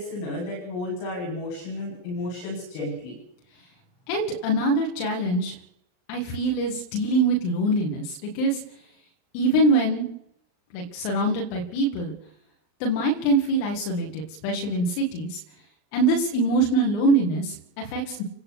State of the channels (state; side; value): late; right; 39 ms